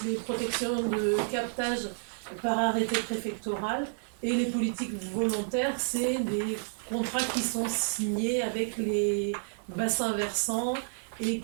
les protections de captage par arrêté préfectoral et les politiques volontaires, c'est des contrats qui sont signés avec les bassins versants et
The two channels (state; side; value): silent; left; digital silence